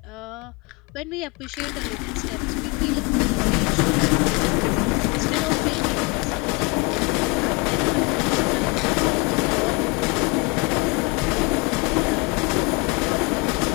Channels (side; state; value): right; quieter; 28.4 dB